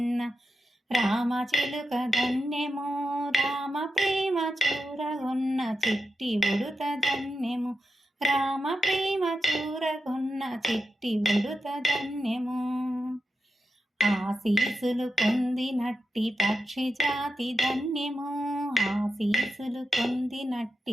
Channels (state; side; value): normal; both; correlation 0.88